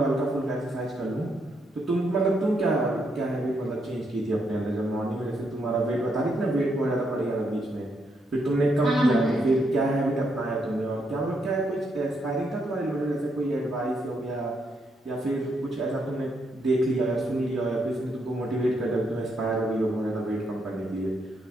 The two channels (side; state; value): both; normal; correlation 0.77